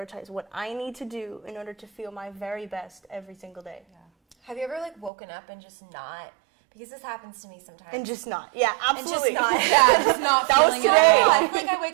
what I need to do in order to feel my very best every single day. Yeah. Have you ever, like, woken up and just not, because this happens to me sometimes. And just not. Yeah, absolutely. And just not. Yeah, just not That was feeling it today. at all. I feel like I wake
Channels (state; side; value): drops out; left; at 5.1 s